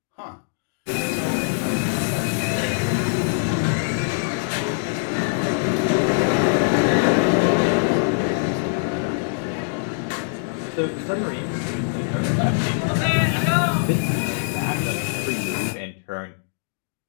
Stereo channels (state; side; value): silent; right; digital silence